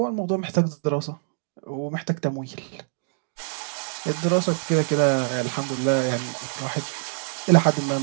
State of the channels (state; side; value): silent; left; digital silence